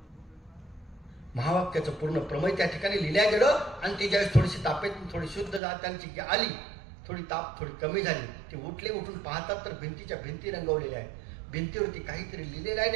महावाक्याचं पूर्ण प्रमेय त्या ठिकाणी लिहिल्या गेलं आणि ती ज्यावेळेस थोडीशी तापेत थोडी शुद्ध त्यांची आली, थोडी ताप थोडी कमी झाली, ते उठून पाहतात तर भिंतीच्या भिंती रंगवलेल्या आहेत. भिंतीवरती काहीतरी लिहिलेलं आहे.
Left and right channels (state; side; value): drops out; left; at 5.6 s